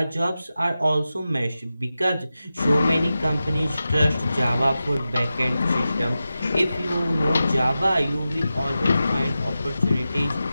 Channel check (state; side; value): inverted; both; correlation -0.93